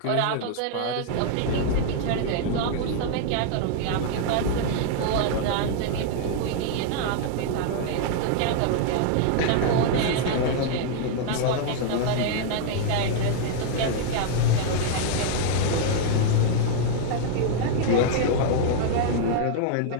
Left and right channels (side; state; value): both; different; correlation -0.01